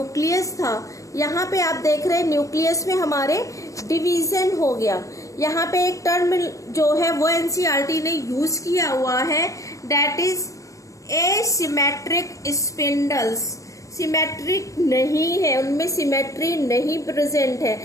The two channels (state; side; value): late; right; 0.16 ms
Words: था, यहाँ पे आप देख रहे हैं न्यूक्लियस में हमारे डिवीजन हो गया। यहाँ पे एक टर्म जो है वो एनसीईआरटी ने यूज किया हुआ है, that is asymmetric spindles. Symmetric नहीं है, उनमें सिमेट्री नहीं प्रेजेंट है।